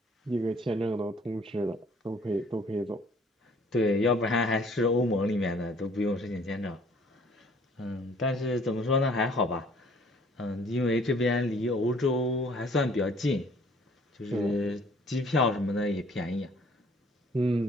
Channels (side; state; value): both; normal; correlation 0.57